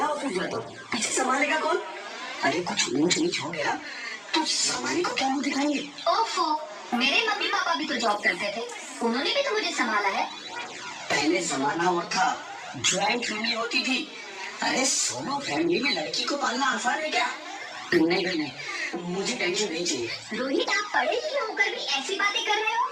जाता हूँ, पीछे संभालेगा कौन? अरे कुछ ऊंच नीच हो गया तो संभालने को क्या मुंह दिखाएंगे? ओफो, मेरे मम्मी पापा भी तो जॉब करते थे, उन्होंने भी तो मुझे संभाला है। पहले जमाना और था, ज्वाइंट फैमिली होती थी। अरे सोलो फैमिली में लड़की को पालना आसान है क्या? नहीं नहीं, मुझे टेंशन नहीं चाहिए। रोहित, आप पढ़े लिखे होकर भी ऐसी बातें कर रहे हो?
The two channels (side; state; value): both; identical; correlation 1.00